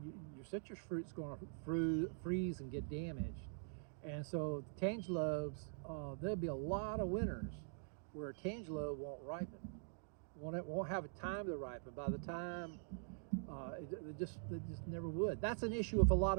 citrus fruit's going to freeze and get damaged. And so tangelos, there'll be a lot of winters where a tangelo won't ripen. It won't have a time to ripen. By the time, it just never would. That's an issue with a lot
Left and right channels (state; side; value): silent; left; digital silence